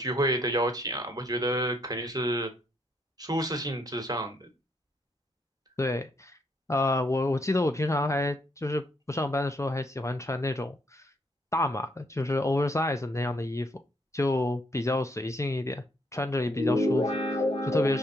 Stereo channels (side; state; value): both; normal; correlation 0.72